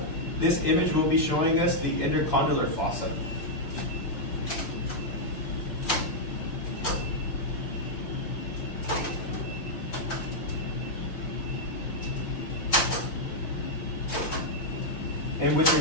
This image will be showing us the intercondylar fossa. And with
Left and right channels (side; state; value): right; late; 5.8 ms